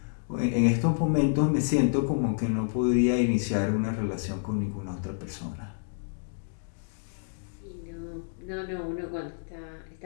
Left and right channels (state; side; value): silent; right; digital silence